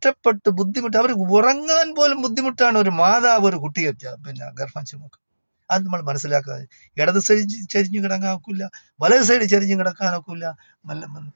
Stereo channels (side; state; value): both; inverted; correlation -1.00